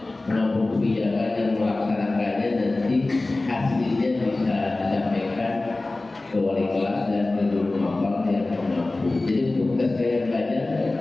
menampung kebijakan dan melaksanakannya, nanti hasilnya bisa disampaikan ke wali kelas dan ke guru mapal yang mampu. Jadi untuk tes gaya belajar,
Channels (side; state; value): right; quieter; 3.0 dB